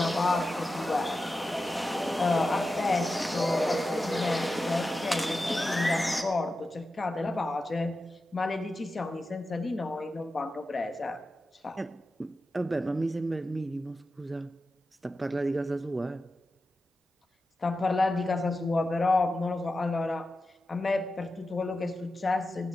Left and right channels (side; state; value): both; normal; correlation 0.92